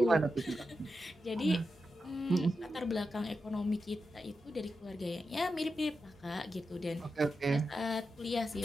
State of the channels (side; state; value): both; normal; correlation 0.89